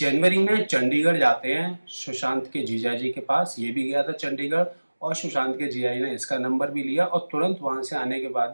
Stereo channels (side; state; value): both; inverted; correlation -1.00